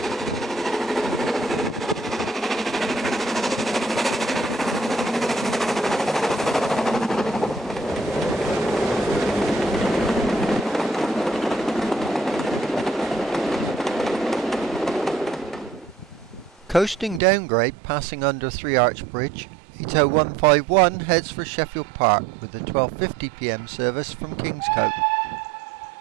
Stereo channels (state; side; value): drops out; left; at 17.2 s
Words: Coasting downgrade passing under 3 Arch Bridge, 80151 heads for Sheffield Park with the 12:50 p.m. service from Kingscote.